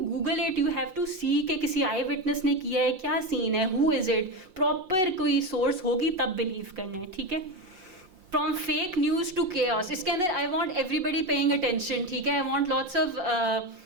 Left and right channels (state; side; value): late; left; 5.6 ms